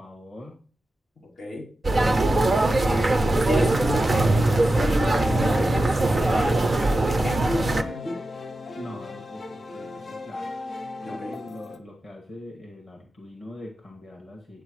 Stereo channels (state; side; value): normal; both; correlation 0.92